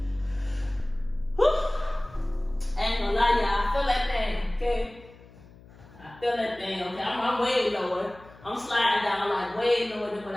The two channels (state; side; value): noise; left; hum, 22 dB below the sound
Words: I ain't gonna lie, y'all, I feel that thing, okay? I feel that thing, okay? I'm way lower. I'm sliding down like way lower than what